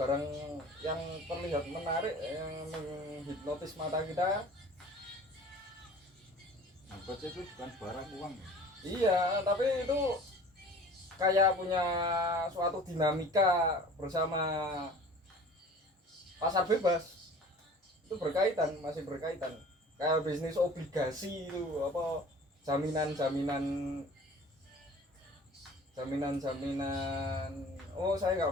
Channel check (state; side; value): normal; both; correlation 0.45